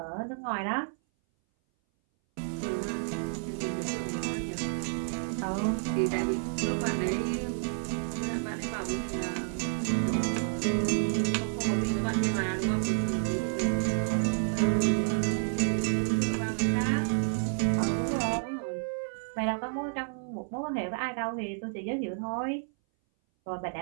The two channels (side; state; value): left; silent; 58 dB below the other